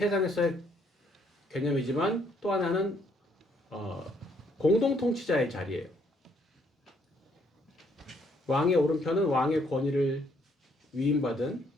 개념이지만 또 하나는 공동 통치자의 자리예요. 왕의 오른편은 왕의 권위를 위임받은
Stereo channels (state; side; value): normal; both; correlation 0.68